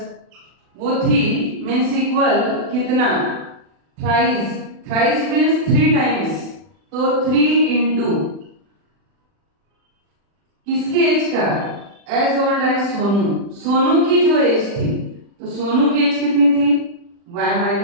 वो थी मीन्स इक्वल कितना? थ्राइस, थ्राइस मीन्स 3 टाइम्स, तो 3 इंटू किसकी एज का? As old as Sonu, Sonu की जो एज थी, तो सोनू की एज कितनी थी? y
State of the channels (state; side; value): late; left; 40 ms